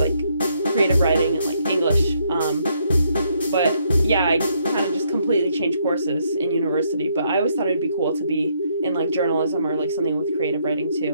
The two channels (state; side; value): inverted; both; correlation -0.72